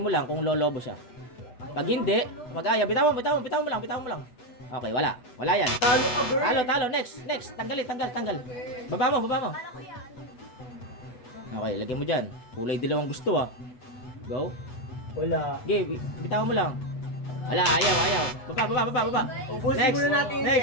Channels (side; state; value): right; late; 8.1 ms